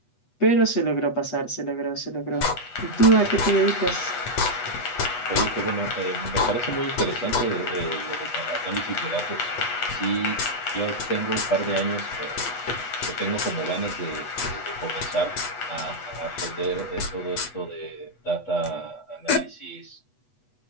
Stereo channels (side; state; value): right; late; 8.2 ms